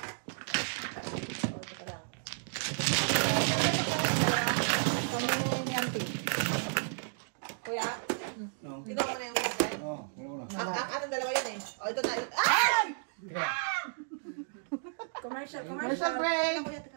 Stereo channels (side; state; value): left; silent; digital silence